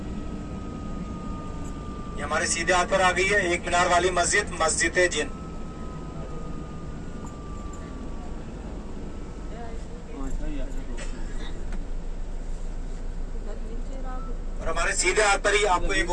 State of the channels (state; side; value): identical; both; correlation 1.00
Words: ये हमारे सीधे हाथ पर आ गई है। 1 मीनार वाली मस्जिद जिन। और हमारे सीधे हाथ पर ही आपको एक